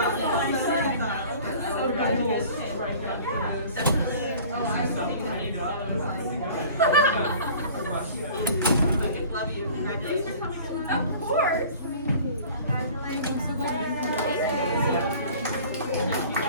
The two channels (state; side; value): inverted; both; correlation -0.46